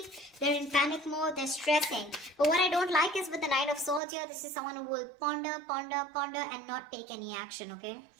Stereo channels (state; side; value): drops out; left; at 4.0 s